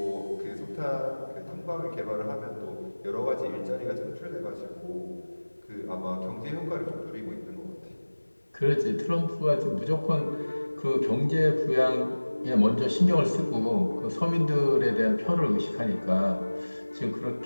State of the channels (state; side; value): inverted; both; correlation -1.00